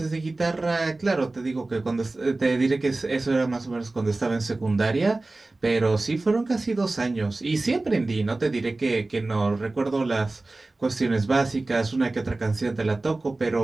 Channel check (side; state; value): left; quieter; 3.1 dB